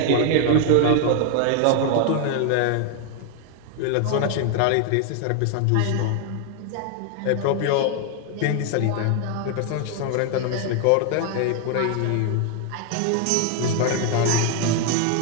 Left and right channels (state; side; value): different; both; correlation 0.00